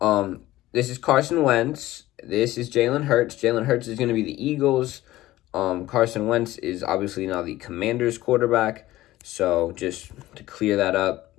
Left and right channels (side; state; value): right; quieter; 16.3 dB